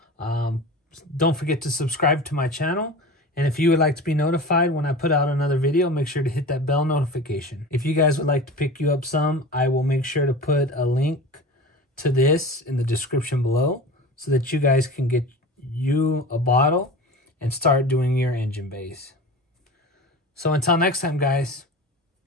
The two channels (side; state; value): both; normal; correlation 0.33